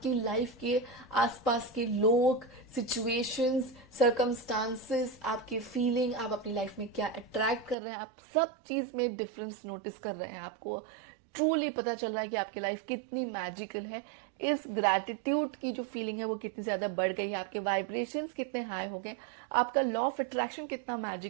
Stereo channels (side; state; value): left; drops out; at 7.8 s